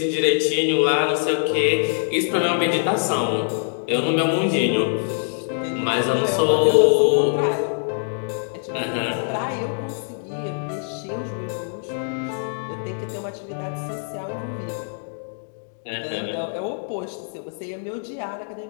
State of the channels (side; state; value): right; silent; digital silence